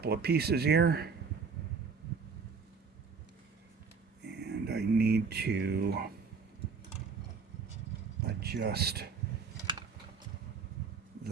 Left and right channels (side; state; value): left; quieter; 5.4 dB